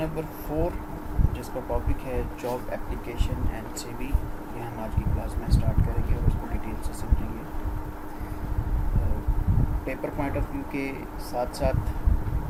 4 جس کا ٹاپک ہے جاب اپلیکیشن اینڈ سی وی. یہ ہم آج کی کلاس میں اسٹارٹ کریں گے اور اس کو ڈیٹیل سے سمجھیں گے. پیپر پوائنٹ آف ویو کے ساتھ ساتھ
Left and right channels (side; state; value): both; identical; correlation 1.00